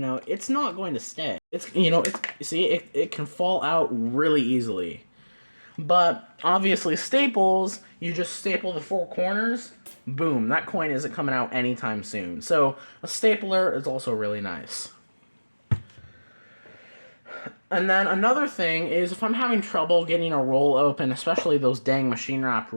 it's not going to stay. It's, you know, it can fall out really easily. But obviously staples, you just staple the 4 corners, boom, that coin isn't coming out anytime soon. So a stapler is also really nice. And then another thing is if I'm having trouble getting a roll open, especially those dang machine wrap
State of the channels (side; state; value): both; inverted; correlation -1.00